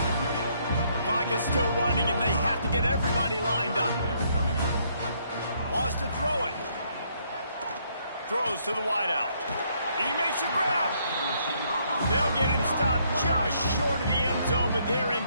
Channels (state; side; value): inverted; both; correlation -0.70